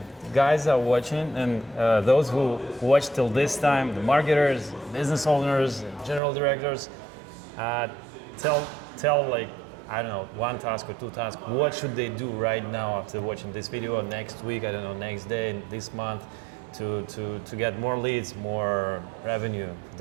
guys are watching, and those who watch till this time, the marketers, business owners, and general directors, tell like, I don't know, one task or two tasks. What should they do right now after watching this video, or next week, I don't know, next day, this month, to get more leads, more revenue for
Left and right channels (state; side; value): drops out; left; at 6.2 s